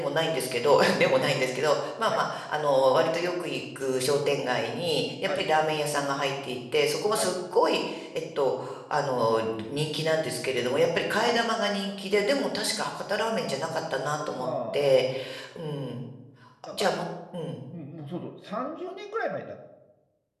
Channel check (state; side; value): identical; both; correlation 1.00